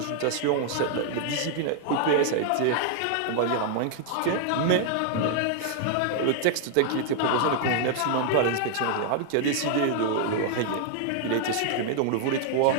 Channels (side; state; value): both; different; correlation 0.00